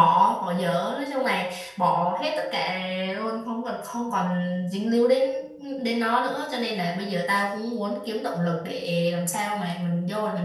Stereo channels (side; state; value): both; identical; correlation 1.00